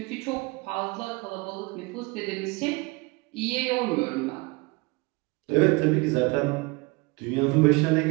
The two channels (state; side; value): quieter; left; 25.9 dB